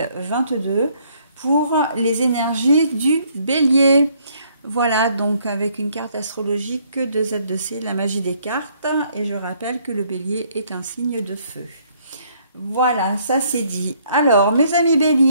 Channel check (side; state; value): both; inverted; correlation -0.66